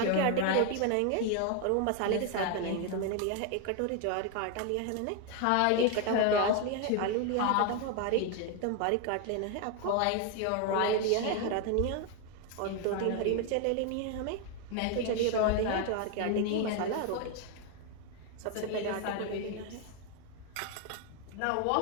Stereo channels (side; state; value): both; different; correlation 0.01